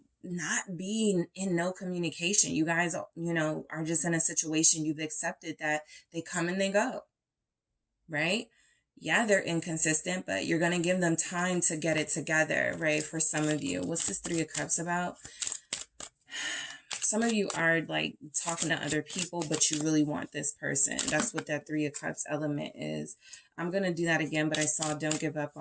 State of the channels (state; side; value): identical; both; correlation 1.00